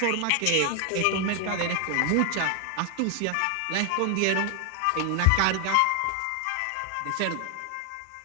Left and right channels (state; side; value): different; both; correlation 0.00